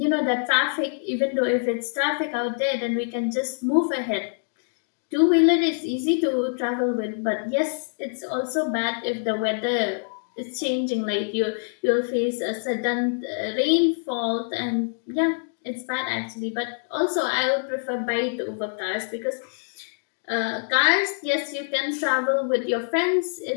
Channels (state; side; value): silent; right; digital silence